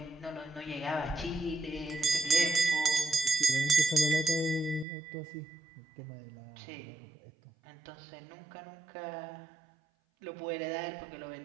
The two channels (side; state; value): left; drops out; at 4.9 s